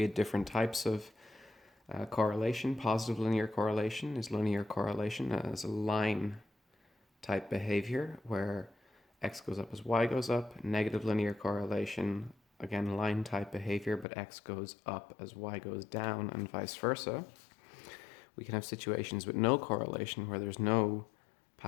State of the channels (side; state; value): right; drops out; at 14.1 s